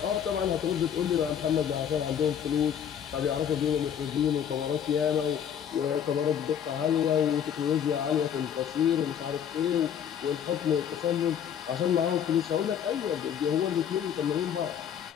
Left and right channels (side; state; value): right; quieter; 8.8 dB